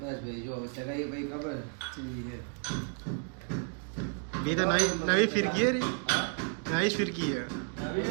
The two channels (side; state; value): left; quieter; 39.9 dB